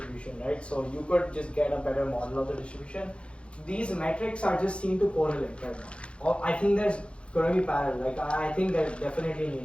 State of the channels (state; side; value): late; right; 0.059 ms